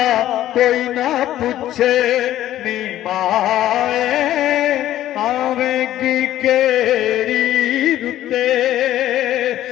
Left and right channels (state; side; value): quieter; right; 13.1 dB